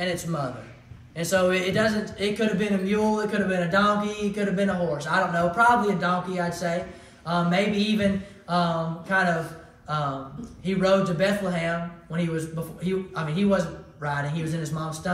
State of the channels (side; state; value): both; identical; correlation 1.00